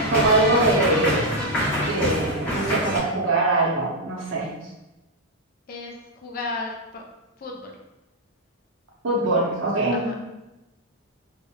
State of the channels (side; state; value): both; normal; correlation -0.03